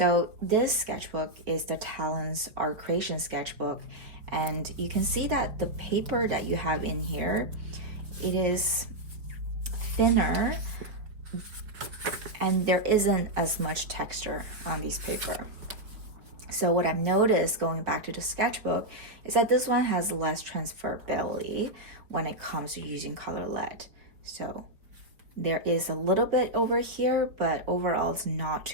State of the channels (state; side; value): late; left; 4.8 ms